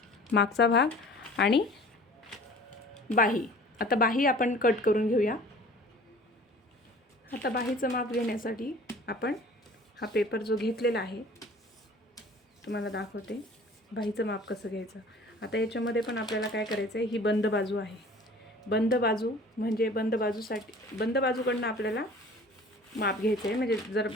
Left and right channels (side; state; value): both; normal; correlation 0.47